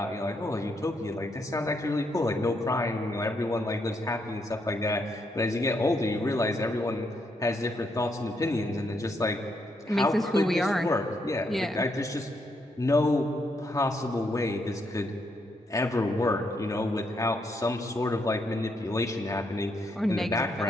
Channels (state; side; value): normal; both; correlation 0.77